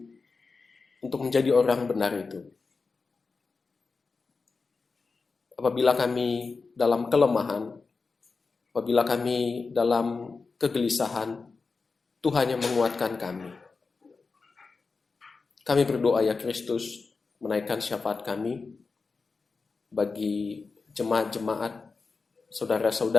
untuk menjadi orang benar itu. apabila kami dalam kelemahan, apabila kami dalam kegelisahan, Tuhan yang menguatkan kami. Kami berdoa ya Kristus, menaikkan syafaat kami bagi jemaat-jemaat,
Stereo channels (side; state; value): right; quieter; 4.4 dB